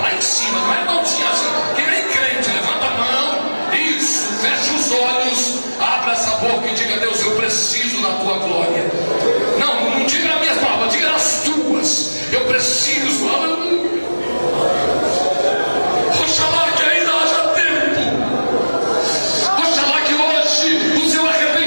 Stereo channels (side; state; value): both; inverted; correlation -1.00